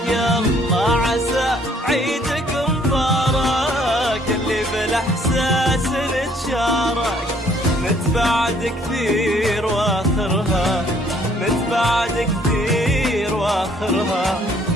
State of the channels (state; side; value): normal; both; correlation 0.63